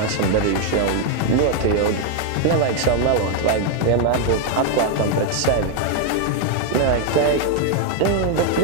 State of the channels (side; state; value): both; different; correlation 0.00